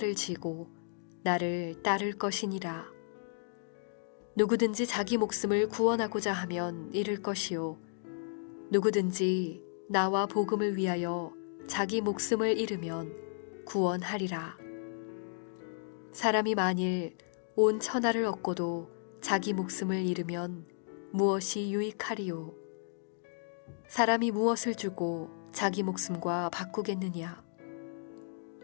지고 나를 따를 것이니라. 누구든지 자기 목숨을 구원하고자 하면 잃을 것이요 누구든지 나와 복음을 위하여 자기 목숨을 잃으면 구원하리라. 사람이 만일 온 천하를 얻고도 자기 목숨을 잃으면 무엇이 유익하리요? 사람이 무엇을 주고 자기 목숨과 바꾸겠느냐?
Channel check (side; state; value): right; silent; digital silence